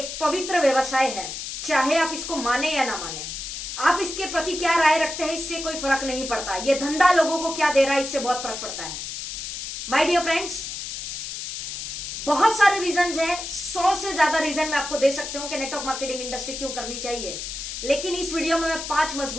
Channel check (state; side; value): noise; left; hiss, 7 dB below the sound